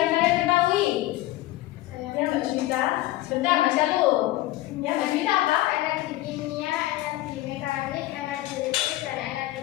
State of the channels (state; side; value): quieter; right; 16.8 dB